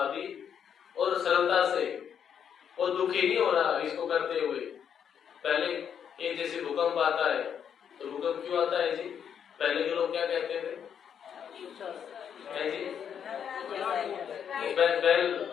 और सरलता से, और दुखी नहीं हो रहा इसको करते हुए। पहले एक जैसे भूकंप आता है तो भूकंप क्यों आता है जी? पहले के लोग क्या कहते थे जी?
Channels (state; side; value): quieter; right; 8.1 dB